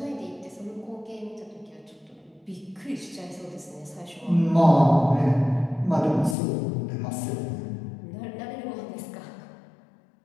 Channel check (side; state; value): right; drops out; at 6.4 s